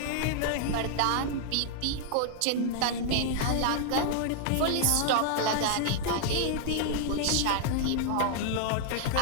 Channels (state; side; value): different; both; correlation -0.01